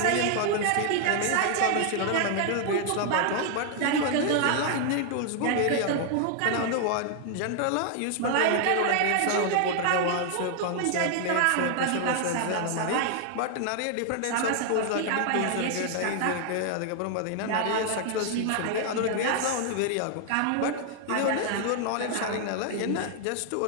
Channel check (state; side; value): different; both; correlation 0.00